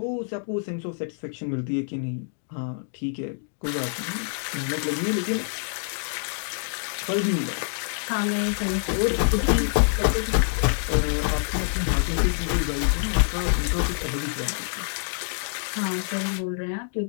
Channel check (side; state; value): right; silent; digital silence